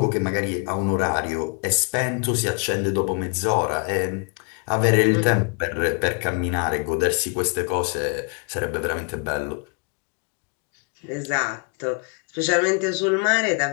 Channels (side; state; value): right; quieter; 37.0 dB